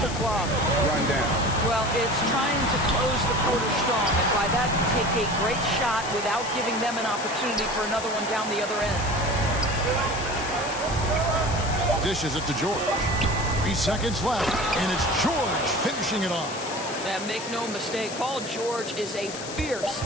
the clock run down. Well, it's trying to close the quarter strong, and by that, take a great shot without giving them an opportunity for another one down the other end. Dishes it to George. 3 seconds left, and it's George finishing it off. And make no mistake, Paul George is a fierce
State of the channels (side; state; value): left; noise; hiss, 10 dB below the sound